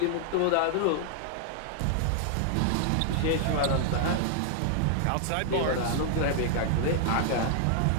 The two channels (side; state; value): both; different; correlation -0.01